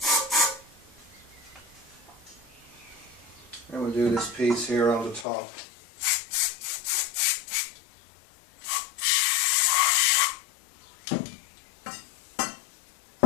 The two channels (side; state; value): right; drops out; at 5.2 s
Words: And we'll do this piece here on the top.